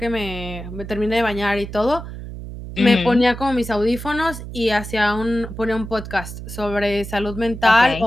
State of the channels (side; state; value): right; noise; hum, 10 dB below the sound